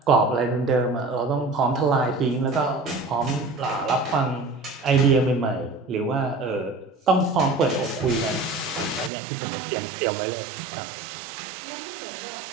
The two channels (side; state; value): left; drops out; at 9.1 s